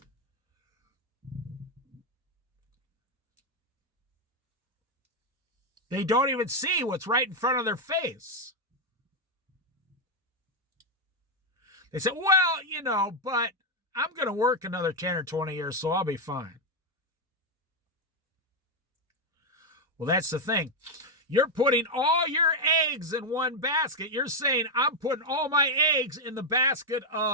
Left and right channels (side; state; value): both; normal; correlation 0.02